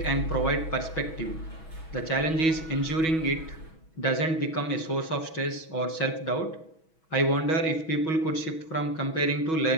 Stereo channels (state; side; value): late; right; 6.2 ms